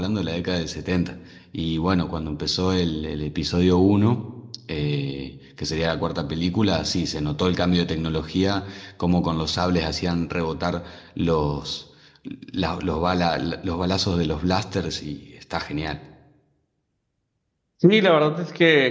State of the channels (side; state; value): both; identical; correlation 1.00